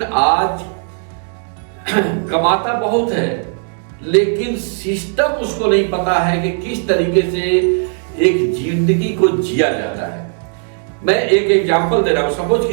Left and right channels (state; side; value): silent; left; 68 dB below the other